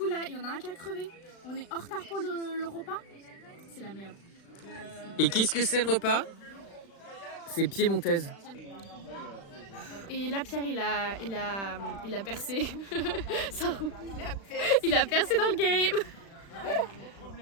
là, il y en a un qui a crevé. On est en retard pour le repas. C'est la merde. Et qu'est-ce que c'est le repas? C'est piémontaise. Et là Pierre il a percé. Ça roule. Il a percé dans le game.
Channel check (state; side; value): late; right; 36 ms